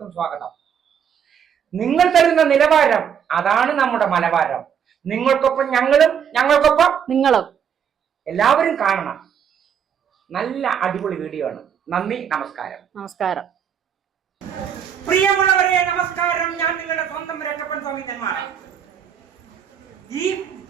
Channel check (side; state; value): left; quieter; 8.1 dB